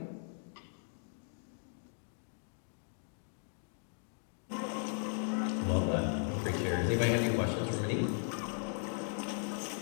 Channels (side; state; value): right; silent; 53 dB below the other